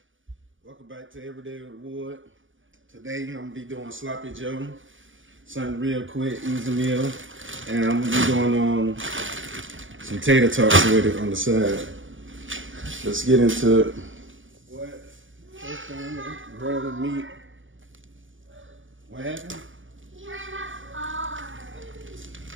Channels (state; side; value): late; left; 0.57 ms